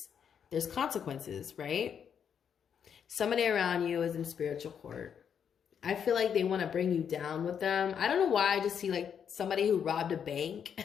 there's consequences, right? Somebody around you is in spiritual court. I feel like they want to bring you down with them. I don't know why. I just see like somebody who robbed a bank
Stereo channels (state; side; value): quieter; right; 7.8 dB